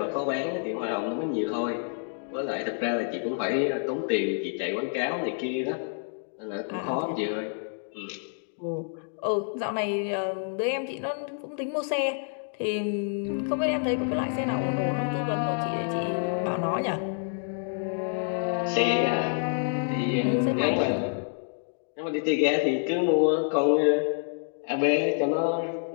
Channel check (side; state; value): right; silent; 59 dB below the other